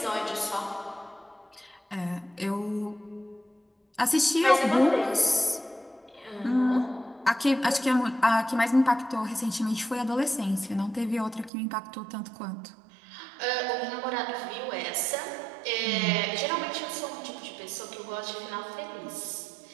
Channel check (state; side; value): drops out; left; at 11.5 s